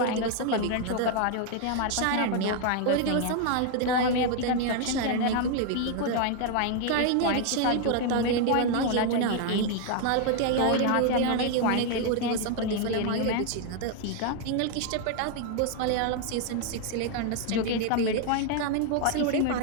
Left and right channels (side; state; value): both; different; correlation 0.00